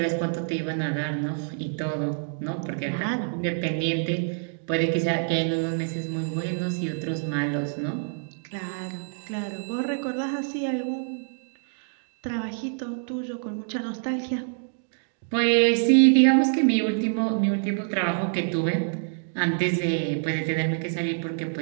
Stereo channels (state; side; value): silent; left; digital silence